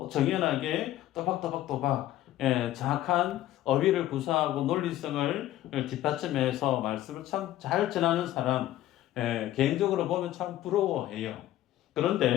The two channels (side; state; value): right; quieter; 13.9 dB